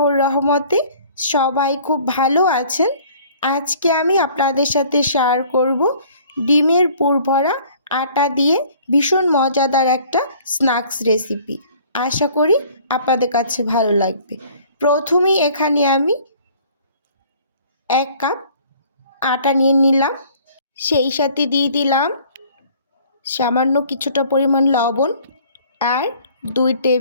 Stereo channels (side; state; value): both; inverted; correlation -0.54